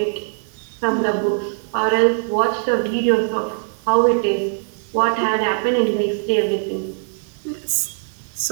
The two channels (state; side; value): silent; left; 62 dB below the other